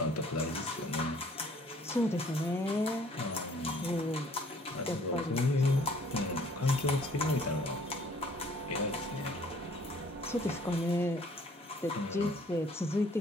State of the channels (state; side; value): normal; both; correlation 0.58